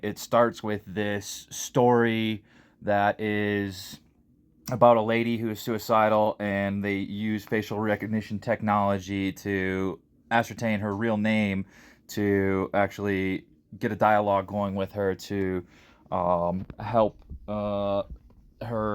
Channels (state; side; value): identical; both; correlation 1.00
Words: it starts with this story that is about a lady who is suicidal, and they use facial recognition technology to ascertain her real name to actually get a dialogue going with her to help